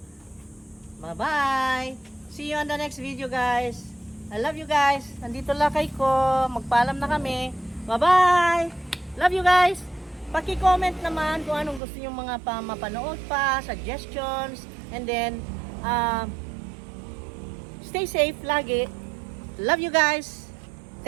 Bye-bye! See you on the next video guys. I love you guys. Nandito lakay ko. Magpaalam na kami. Bye-bye! Love you guys! Paki-comment naman kung anong gusto nyo mga mapanood pa, suggestions, and then stay safe lagi. Love you guys!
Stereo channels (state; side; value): drops out; left; at 11.8 s